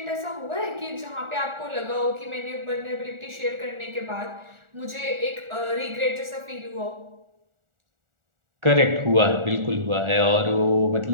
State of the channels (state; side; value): late; left; 1.4 ms